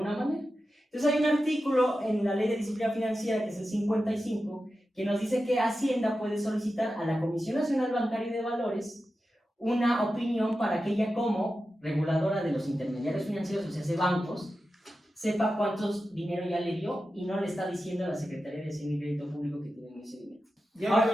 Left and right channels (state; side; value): normal; both; correlation 0.92